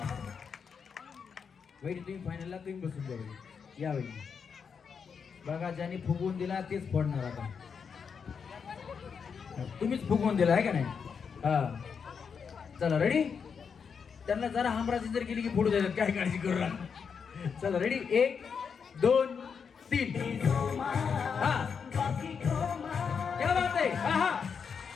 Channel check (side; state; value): right; quieter; 6.3 dB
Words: वहिनी तुम्ही फायनलला तुम्ही बसून द्या वहिनी. या वहिनी. बघा ज्यांनी फुगवून दिला तेच फोडणार आता. तुम्हीच फुगवून दिला आहे का नाही. हा चला रेडी. त्यांना जरा हमराजी जर केली की फोडू द्यायला काय काळजी करू नका. चला रेडी. 1 2 3 हा. क्या बात आहे. हा हा